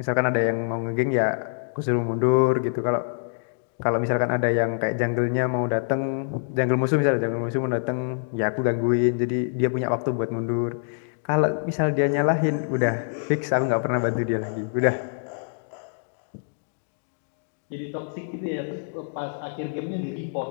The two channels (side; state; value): right; silent; digital silence